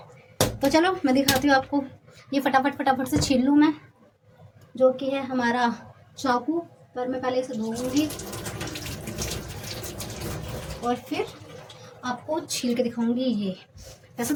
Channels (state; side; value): identical; both; correlation 1.00